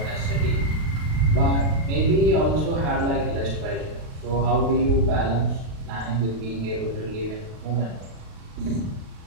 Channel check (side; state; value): left; late; 36 ms